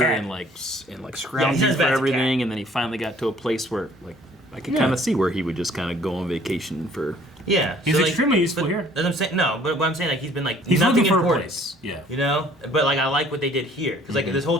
and Yeah, scrounging he's not as for bad as a everything, and then he finally got to a place where I could kind of see where he would just kind of go on vacation for. yeah, he's extremely useful but, here. As I'm saying, no, but what I'm saying he's been He's nothing looking for a important, place. Yeah. you know. But I like what they did here because this whole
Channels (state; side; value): normal; both; correlation 0.56